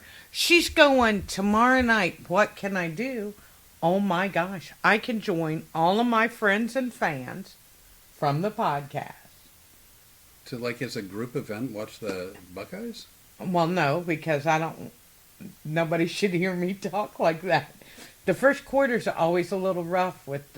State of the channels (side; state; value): both; identical; correlation 1.00